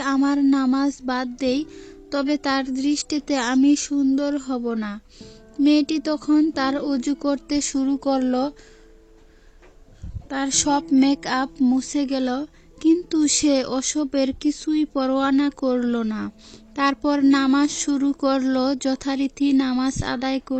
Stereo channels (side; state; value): both; identical; correlation 1.00